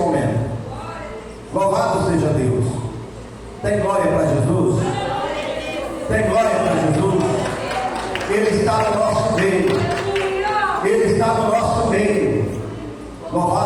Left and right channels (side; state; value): both; identical; correlation 1.00